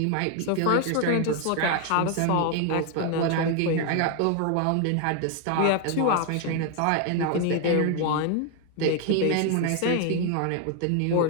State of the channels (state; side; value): different; both; correlation 0.01